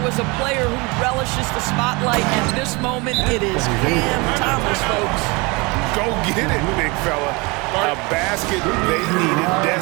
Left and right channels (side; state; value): left; quieter; 26.7 dB